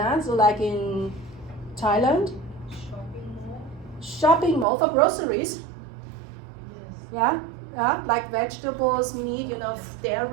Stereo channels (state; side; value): drops out; left; at 4.7 s